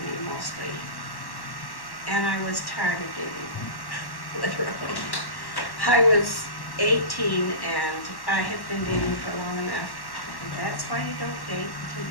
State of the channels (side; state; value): right; late; 1.1 ms